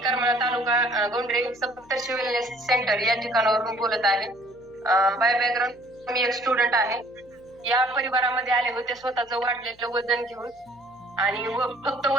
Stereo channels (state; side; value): noise; left; hum, 29 dB below the sound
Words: करमाळा तालुका गोंडरे सप्तर्षी wellness centre या ठिकाणावरून बोलत आहे. बाय बॅकग्राऊंड मी एक स्टुडंट आहे. या परिवारामध्ये आले होते स्वतःचं वाढलेलं वजन घेऊन, आणि फक्त